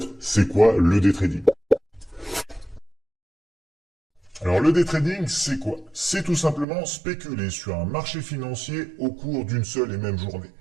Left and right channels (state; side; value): drops out; left; at 6.7 s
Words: c'est quoi le day trading? Alors le day trading, c'est quoi? C'est tout simplement spéculer sur un marché financier au cours d'une seule et même journée.